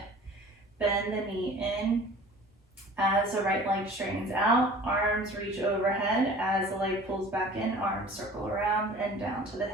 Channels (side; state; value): both; normal; correlation 0.45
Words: bend the knee in as the right leg straightens out. Arms reach overhead as the leg pulls back in. Arms circle around and down to the